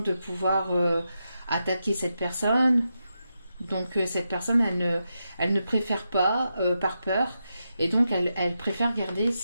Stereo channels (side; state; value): both; inverted; correlation -0.87